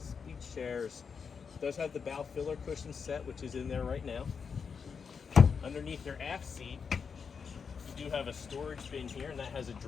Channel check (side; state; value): right; quieter; 6.0 dB